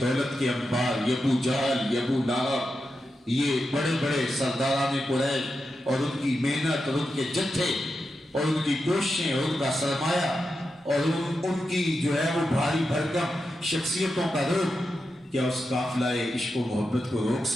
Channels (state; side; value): normal; both; correlation 0.88